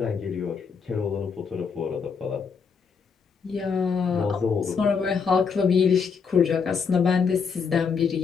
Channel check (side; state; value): right; quieter; 5.8 dB